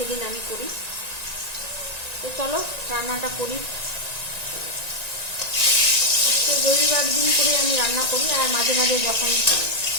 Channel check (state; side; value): late; left; 1.9 ms